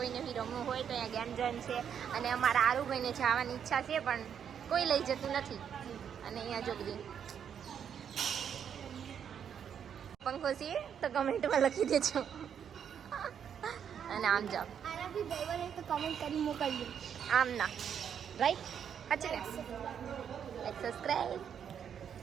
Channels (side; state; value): left; quieter; 8.2 dB